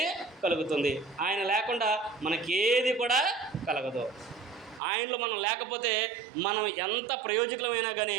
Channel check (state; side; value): drops out; left; at 4.8 s